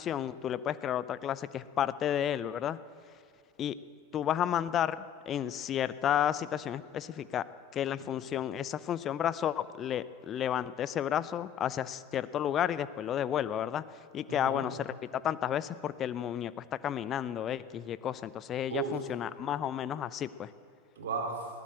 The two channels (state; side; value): quieter; right; 8.7 dB